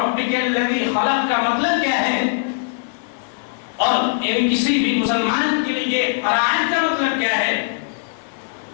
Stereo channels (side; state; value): right; silent; digital silence